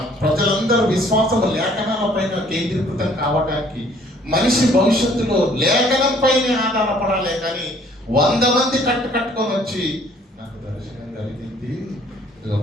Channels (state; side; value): normal; both; correlation 0.59